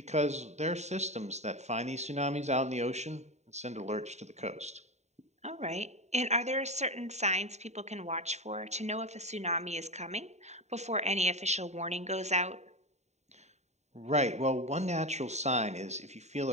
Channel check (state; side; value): late; left; 0.32 ms